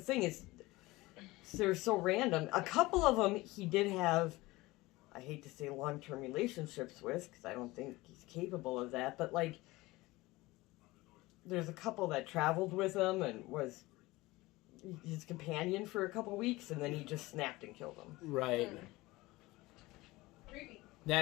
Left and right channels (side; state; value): right; quieter; 20.4 dB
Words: is they're so random. A couple of them he did have, I hate to say long-term relationships with, because I don't think he's capable of that, but like, there's a couple that traveled with him and was his companion for a couple weeks, and then he just snapped and killed him. Right. Creepy.